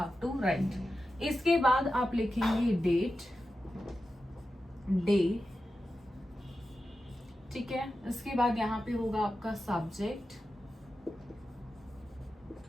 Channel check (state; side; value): normal; both; correlation 0.92